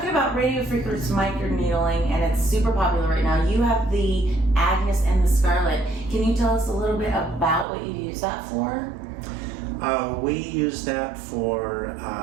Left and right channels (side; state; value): left; drops out; at 7.7 s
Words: about radio frequency microneedling, and it's super popular right now. You have the AGNES and the SCARLET. Can you tell us a little bit about what you use that for? We use that for